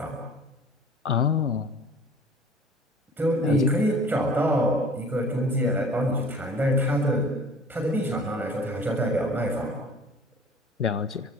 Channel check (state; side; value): normal; both; correlation 0.46